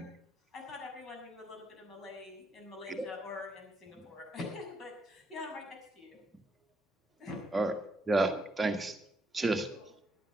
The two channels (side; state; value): both; normal; correlation 0.77